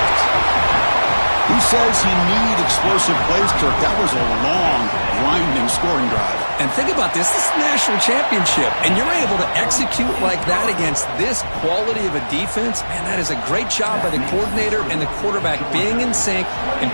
Who says you need explosive plays, Kirk? That was a long, grinding scoring drive. And think about this. This is a national championship, and you're able to execute like that against this quality of a defense. Man, that is a great job by the coordinator and the quarterback being in sync and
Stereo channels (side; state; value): both; inverted; correlation -1.00